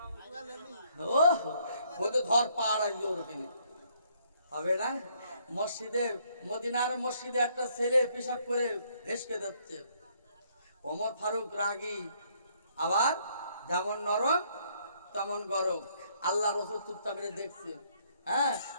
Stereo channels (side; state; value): both; inverted; correlation -0.68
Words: ও বলতে ধর পাড় আসবে, ওরকম হবে না। মসজিদে, মদিনার মসজিদে একটা ছেলে পেশাব করে ভেসকে যাচ্ছে। ওমর ফারুক রাগী, আবার যেমন নরম তেমন গরম। আল্লাহ রসুল চুপচাপ করে দেখছে। হ্যাঁ,